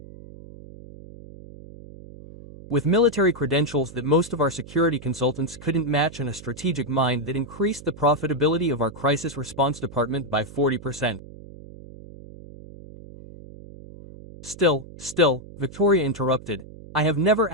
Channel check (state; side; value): noise; right; hum, 17 dB below the sound